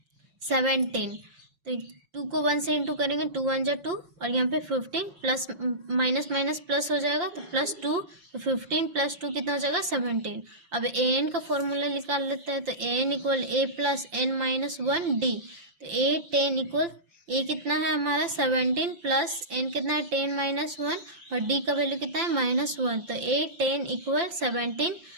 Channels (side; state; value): left; late; 5.8 ms